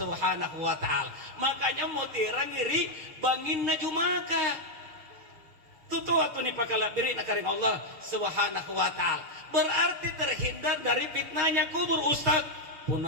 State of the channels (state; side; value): late; left; 6.4 ms